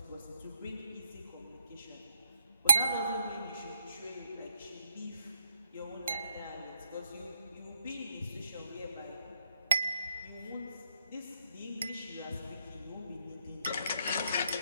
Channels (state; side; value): inverted; both; correlation -0.76